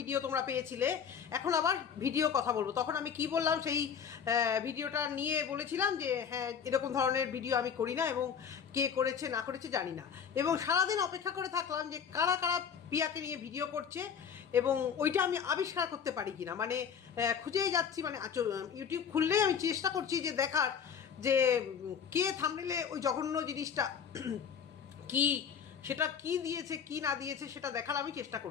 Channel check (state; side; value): quieter; right; 7.4 dB